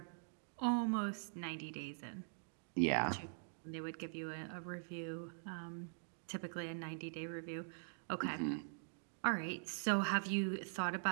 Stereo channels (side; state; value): left; silent; digital silence